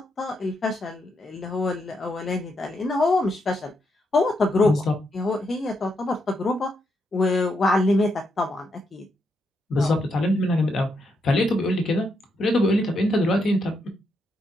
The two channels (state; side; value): normal; both; correlation 0.80